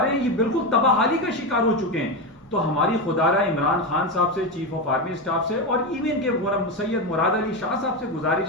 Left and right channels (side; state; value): both; normal; correlation 0.13